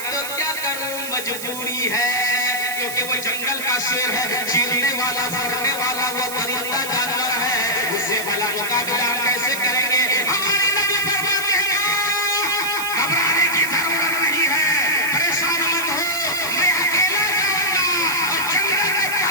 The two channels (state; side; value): noise; right; hiss, 8 dB below the sound